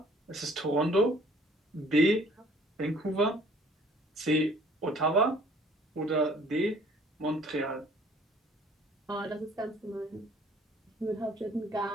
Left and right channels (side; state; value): both; normal; correlation 0.56